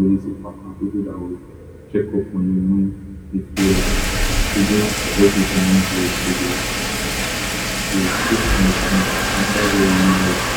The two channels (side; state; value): both; identical; correlation 1.00